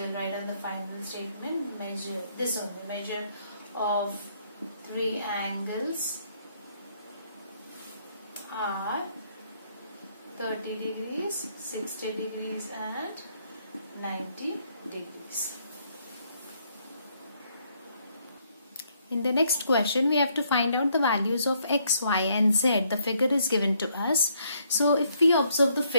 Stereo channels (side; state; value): both; inverted; correlation -0.71